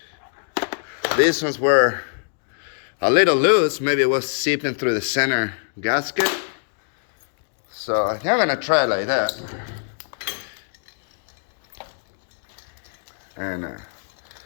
These ones were a little loose. Maybe it was seeping through the center gasket. So I think I'm gonna try like that. And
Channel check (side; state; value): right; silent; digital silence